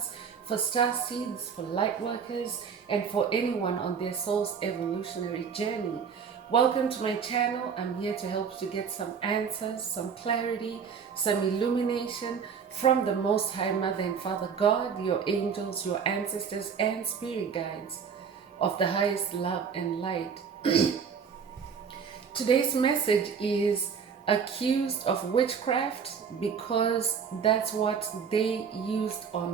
for star seeds, for light workers, and for anyone on their soul's evolutionary journey. Welcome to my channel. I'm here to help you get some answers, some clarity, some illumination from the Most High Mother and Father God, your angels, your ancestors, and spirit guides of the highest love and light. Today's message is accused of witchcraft because that's what they used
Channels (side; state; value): left; quieter; 6.5 dB